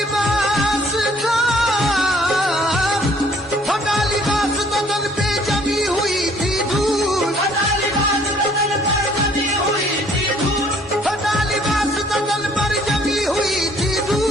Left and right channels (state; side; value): normal; both; correlation 0.60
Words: था, फटा लिबास बदन पे जमी हुई थी धूल, फटा लिबास बदन पर जमी हुई थी धूल, फटा लिबास बदन पर जमी हुई थी